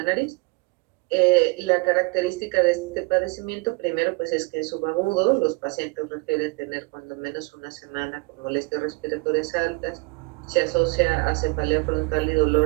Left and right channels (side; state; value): left; quieter; 26.5 dB